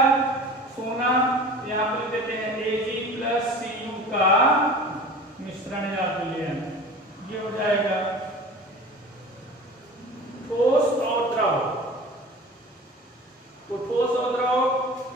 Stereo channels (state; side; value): normal; both; correlation 0.39